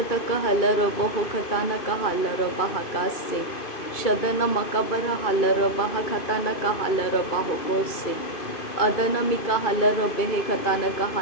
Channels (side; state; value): right; late; 2.5 ms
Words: हालर बहो खाताना का हालर बहा कासे शदन मकबर हालर बहा खाताना का हालर बहो कोसे अदन मिका हालर बेहे खाताना का